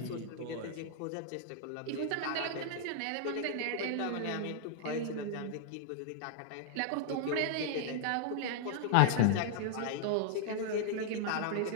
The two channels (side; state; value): both; different; correlation -0.01